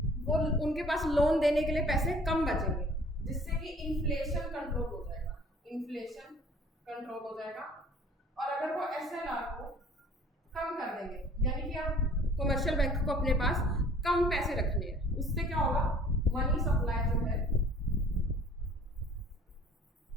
वो उनके पास लोन देने के लिए पैसे कम बचेंगे, जिससे कि इन्फ्लेशन कंट्रोल हो जाएगा, इन्फ्लेशन कंट्रोल हो जाएगा। और अगर वो एसएलआर को कम कर देंगे, यानी कि अब कमर्शियल बैंक को अपने पास कम पैसे रखने हैं, उससे क्या होगा, मनी सप्लाई जो है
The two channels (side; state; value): both; normal; correlation 0.52